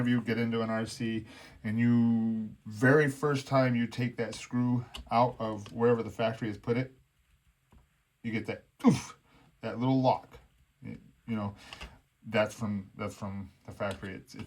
you get into an RC and you, very first time you take that screw out of wherever the factory has put it, you get that oof, that little lock. That's from the factory.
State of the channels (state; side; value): identical; both; correlation 1.00